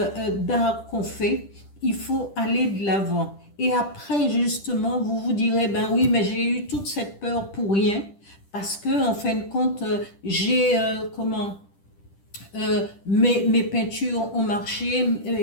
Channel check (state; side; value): late; right; 10 ms